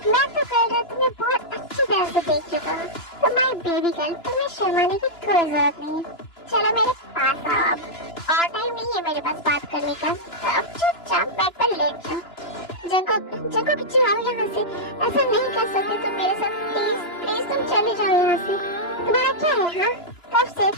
मैं तो कल रात तुम्हें बहुत अच्छी तरह से देख चुका हूँ। तो माय बेबी गर्ल, तुम्हें शर्माने की कोई जरूरत नहीं है। चलो मेरे पास आओ अब, और टाइम नहीं है मेरे पास बात करने का। तो अब चुपचाप बेड पर लेट जाओ। जंकुक जाओ यहाँ से, ऐसा नहीं कर सकते तुम मेरे साथ। प्लीज तुम चले जाओ यहाँ से। तुम्हारा क्या है हाँ? कब से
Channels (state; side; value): late; right; 2.9 ms